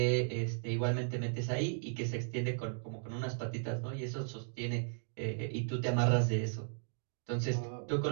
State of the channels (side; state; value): left; silent; digital silence